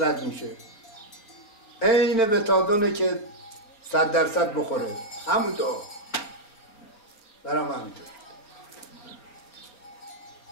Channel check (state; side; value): late; right; 4.5 ms